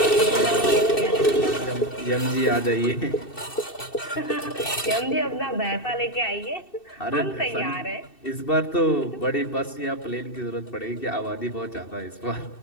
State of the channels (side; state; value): right; late; 2.7 ms